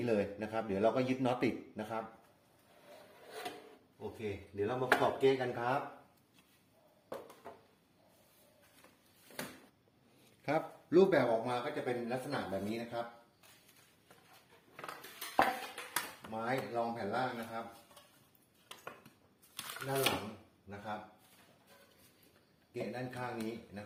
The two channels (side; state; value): both; identical; correlation 1.00